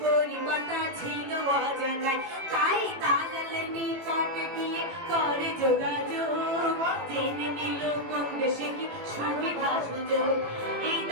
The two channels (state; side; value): late; left; 19 ms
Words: পরিবারটা ছিল অজানায় তাই দালালের নিকটে গিয়ে করে যোগাযোগ জেনে নিল কোন দেশে কি সুবিধা সুযোগ এই